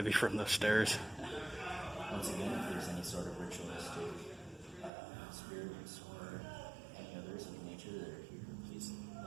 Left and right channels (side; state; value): left; drops out; at 4.9 s